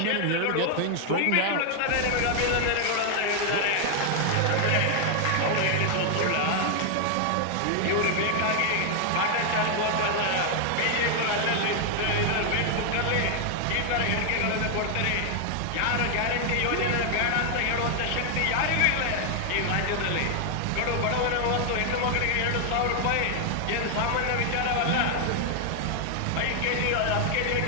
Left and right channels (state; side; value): different; both; correlation 0.00